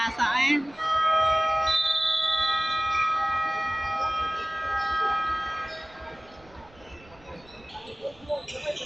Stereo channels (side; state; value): right; noise; rumble, 26 dB below the sound